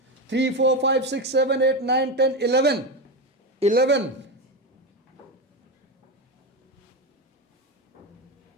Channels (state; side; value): normal; both; correlation 0.16